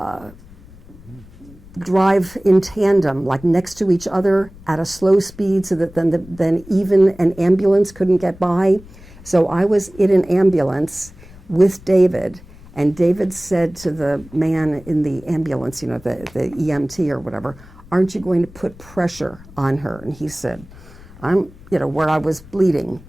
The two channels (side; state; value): left; noise; rumble, 21 dB below the sound